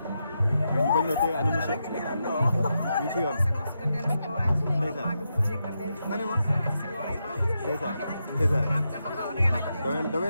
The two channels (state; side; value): inverted; both; correlation -0.85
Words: mais ñu bañ la tey ana monsieur. ñu ci yoon. ndeysaan. nga ne ma. ndeysaan. damay